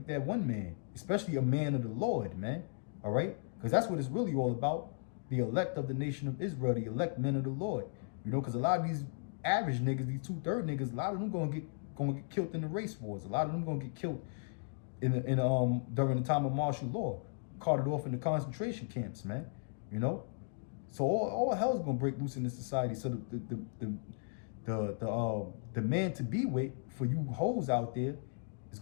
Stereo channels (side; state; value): right; silent; digital silence